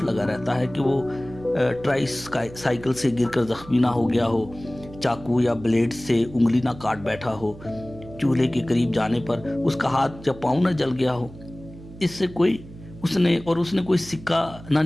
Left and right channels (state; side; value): noise; right; hum, 17 dB below the sound